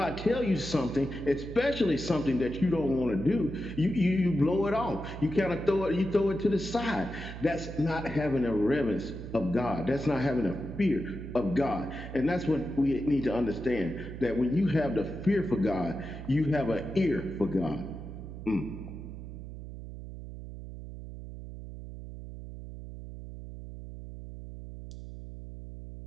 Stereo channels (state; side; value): noise; right; hum, 10 dB below the sound